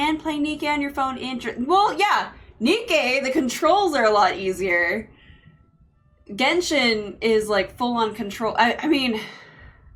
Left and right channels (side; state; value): both; identical; correlation 1.00